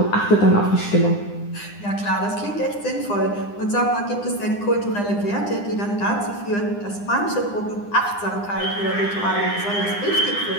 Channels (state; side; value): late; right; 9.9 ms